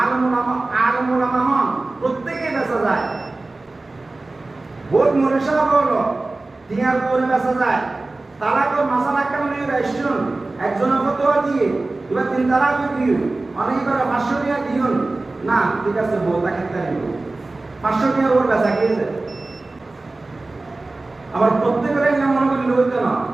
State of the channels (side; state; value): left; quieter; 3.2 dB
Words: আলমুলামা হন প্রত্যেকে বেচা যায় বহুত মনীষা হলো টিয়ার করে বেচা যায় তালাকর মাসালা কারণে রেস্টুরেন্ট একজনের ফতোয়া দিয়ে এবার 3 তালাক দিও অনেকবার 500 টাকা দিও না ঠিক আছে বউ তাকে তাই 500 টাকা ওর বেচা গিয়েছে আবার প্রত্যেকের এটা মনে করি লইতো না